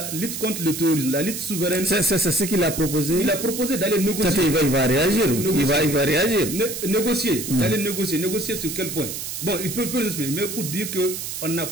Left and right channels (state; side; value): noise; right; hiss, 6 dB below the sound